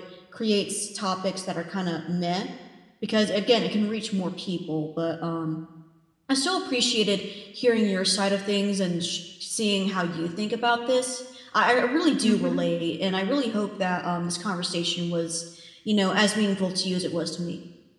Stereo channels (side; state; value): both; identical; correlation 1.00